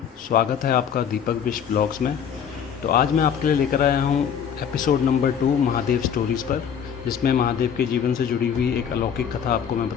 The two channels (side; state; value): right; quieter; 7.9 dB